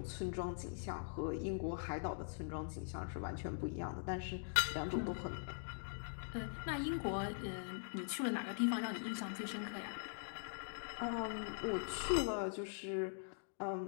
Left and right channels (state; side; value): silent; right; digital silence